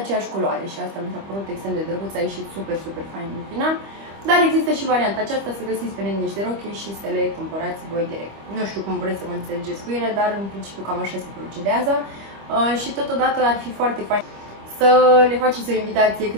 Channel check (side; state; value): left; late; 25 ms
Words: culoare și asta mi s-a părut extrem de drăguț, a ieșit super fain în final. Dar există și varianta aceasta să găsiți pe net niște rochii și să le cumpărați voi direct. Nu știu cum vreți să vă înțelegeți cu ele, dar în principiu cam așa se procedează și totodată ar fi foarte fain să le faceți o invitație